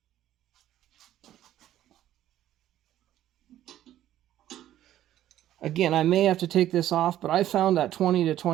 Again, I may have to take this off, but I found that 20 to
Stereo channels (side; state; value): left; quieter; 12.6 dB